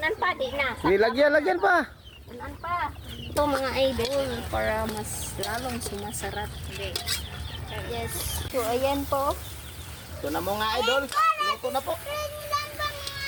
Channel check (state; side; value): identical; both; correlation 1.00